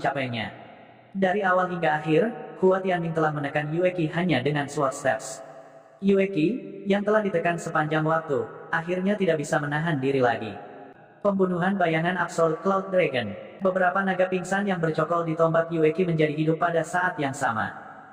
Dari awal hingga akhir, Hua Tianming telah menekan Yue Qi hanya dengan Sword Steps. Yue Qi, yang telah ditekan sepanjang waktu, akhirnya tidak bisa menahan diri lagi. Pembunuhan bayangan Absolute Cloud Dragon. Beberapa naga pingsan yang bercokol di tombak Yue Qi menjadi hidup pada saat yang sama.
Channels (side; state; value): both; identical; correlation 1.00